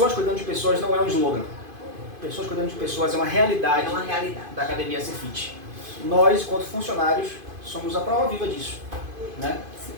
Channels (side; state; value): left; late; 2.5 ms